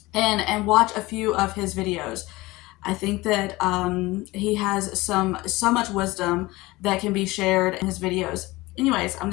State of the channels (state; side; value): quieter; right; 20.5 dB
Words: and watch a few of his videos. I think that he has so much wisdom that can be shared in his videos. Anyways, I'm